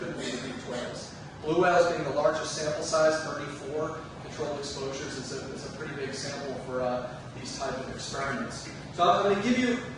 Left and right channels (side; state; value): both; identical; correlation 1.00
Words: do the beaked whales. Blue whales being the largest sample size, 34 controlled exposures, is a pretty big sample for these type of experiments. So I'm going to give you